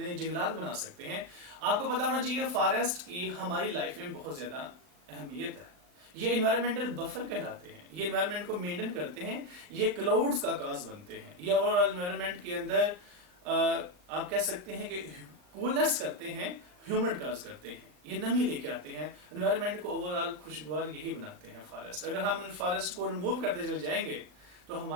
जंगलात बना सकते हैं। आपको पता होना चाहिए फॉरेस्ट की हमारी लाइफ में बहुत ज्यादा अहमियत है। ये इन्वायरमेंटल बफर कहलाते हैं, ये इन्वायरमेंट को मेंटेन करते हैं, ये क्लाउड्स का काज बनते हैं, ये ओवरऑल इन्वायरमेंट के अंदर आप कह सकते हैं कि कूलनेस करते हैं, ह्यूमिड काज करते हैं, ये नमी लेके आते हैं, एनवायरनमेंट को ओवरऑल खुशगवार यही बनाते हैं फॉरेस्ट। अगर हम फॉरेस्ट को रिमूव करते चले जाएंगे तो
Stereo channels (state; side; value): late; left; 39 ms